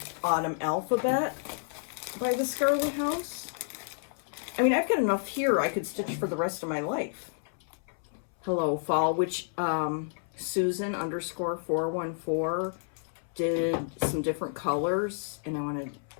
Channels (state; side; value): silent; right; 58 dB below the other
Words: Autumn Alphabet by the Scarlet House. I mean, I've got enough here I could stitch for the rest of my life. Hello Fall, which Susan _414 did some different colors, and I want to